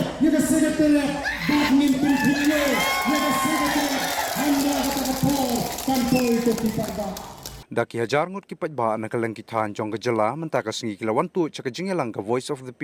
yang sekretariat badminton dunia, yang sekretariat anda kata po tanpa itu kita. Daki hajar ngut kipat ba nakalang kithan jong gajala mentaka singi kilawan tu chaka jingelang ka Voice of the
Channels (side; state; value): both; identical; correlation 1.00